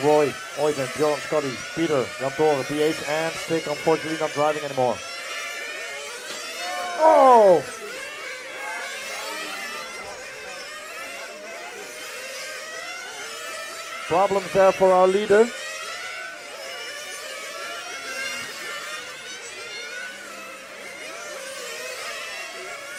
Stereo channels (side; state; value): both; identical; correlation 1.00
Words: Roy, Oyvind, Bjorn, Scotty, Peter, Jan Tore, PH, and Stick, unfortunately not driving anymore. Oh! Problems there for our leader.